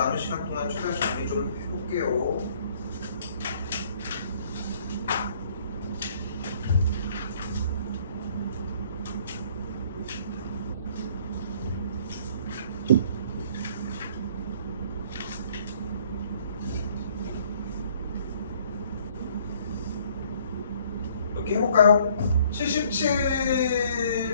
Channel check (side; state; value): both; inverted; correlation -0.60